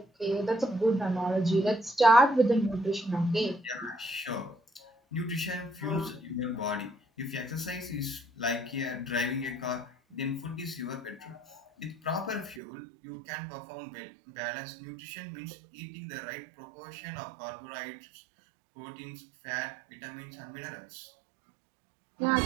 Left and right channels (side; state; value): left; drops out; at 12.6 s